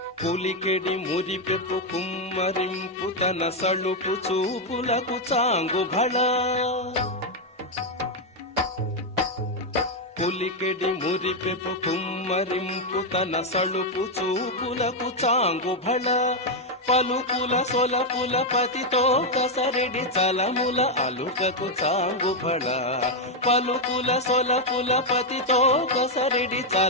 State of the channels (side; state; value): both; normal; correlation 0.02